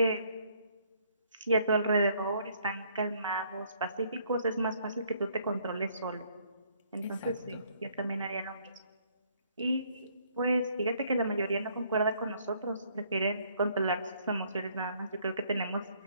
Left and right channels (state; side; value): inverted; both; correlation -0.65